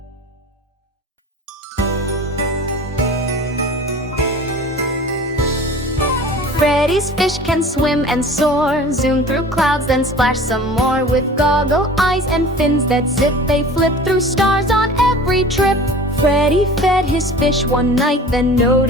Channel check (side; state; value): both; normal; correlation 0.41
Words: Freddie's fish can swim and soar, zoom through clouds then splash some more. With goggle eyes and fins that zip, they flip through stars on every trip. Freddie fed his fish one night, then